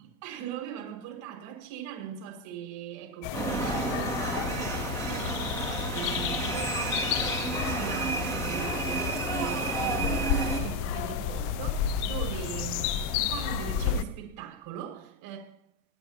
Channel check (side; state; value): both; normal; correlation 0.08